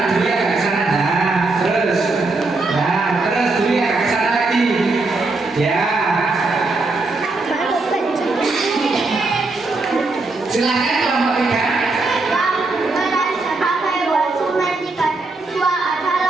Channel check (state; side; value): quieter; left; 3.4 dB